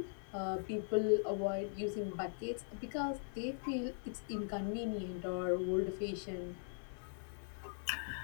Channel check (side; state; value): right; silent; digital silence